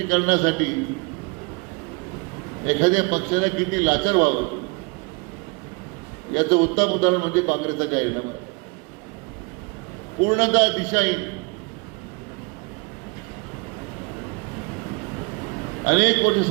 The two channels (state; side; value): quieter; left; 29.6 dB